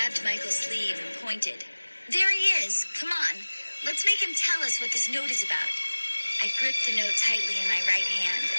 Michael's sleeve and pointed. "There he is. Come on. Let's make him tell us what this note is about." I gripped the note tightly in my right hand,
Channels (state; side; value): inverted; both; correlation -1.00